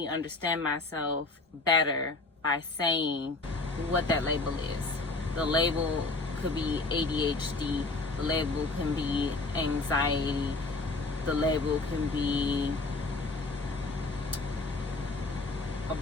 understand myself better by saying what that label is. The label could be ADHD. The label can be anxiety. The label can be a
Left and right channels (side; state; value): right; quieter; 3.4 dB